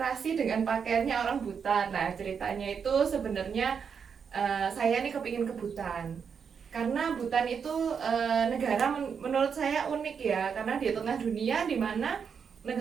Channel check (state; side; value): quieter; left; 6.6 dB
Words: dengan pakaiannya orang Butan? Nah, ceritanya itu sebenarnya saya nih kepingin ke Butan. Karena Butan itu negara menurut saya unik ya, karena di tengah dunia di mana